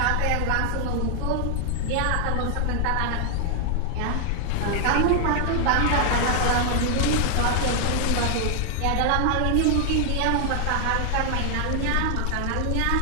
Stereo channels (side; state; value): both; different; correlation 0.00